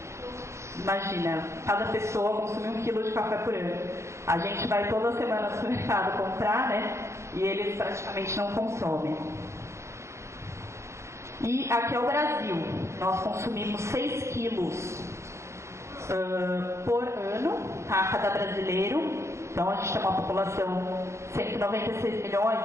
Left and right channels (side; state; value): left; late; 0.14 ms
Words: Imagina, cada pessoa consome 1 quilo de café por ano. A gente vai toda semana no supermercado comprar, né? E eles praticamente não consomem. E aqui é o Brasil. Nós consumimos 6 quilos por ano, tá? Cada brasileiro. Então a gente tem uma população de 196 milhões,